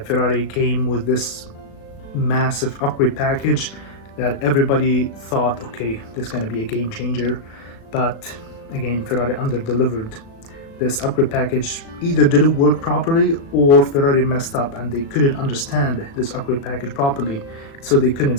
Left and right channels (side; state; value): right; late; 36 ms